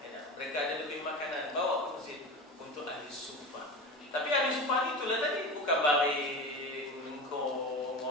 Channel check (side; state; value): both; normal; correlation 0.28